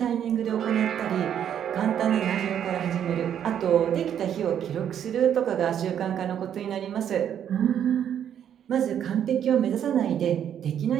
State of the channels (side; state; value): left; quieter; 9.4 dB